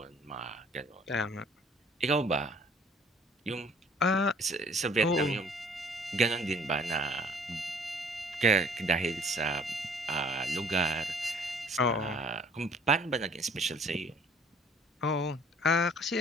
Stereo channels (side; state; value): both; normal; correlation 0.55